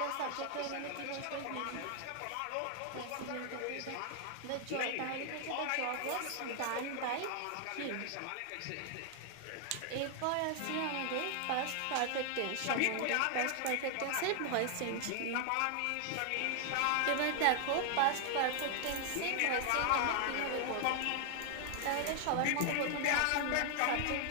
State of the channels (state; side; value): different; both; correlation 0.00